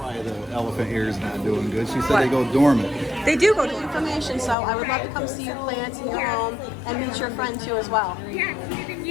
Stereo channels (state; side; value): drops out; right; at 4.5 s